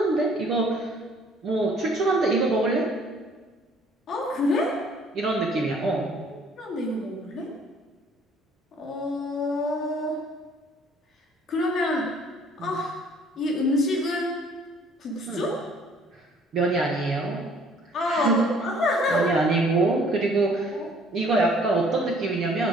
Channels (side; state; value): both; normal; correlation 0.58